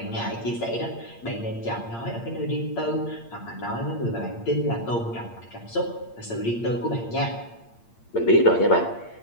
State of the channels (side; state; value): right; late; 8.7 ms